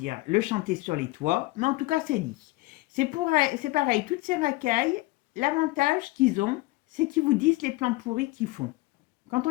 le chanter sur les toits. Mais en tout cas, c'est dit. C'est pareil, toutes ces racailles, l'avantage qu'ils ont, c'est qu'ils vous disent les plans pourris qu'ils font. Quand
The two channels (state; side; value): quieter; right; 20.6 dB